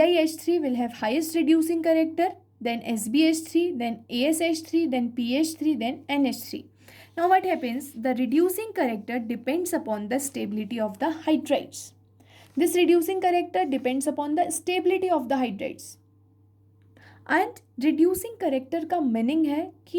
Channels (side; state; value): both; identical; correlation 1.00